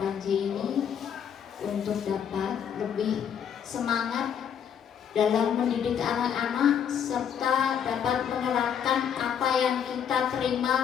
ini untuk dapat lebih semangat dalam mendidik anak-anak serta dapat menerapkan apa yang kita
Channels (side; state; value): right; quieter; 8.3 dB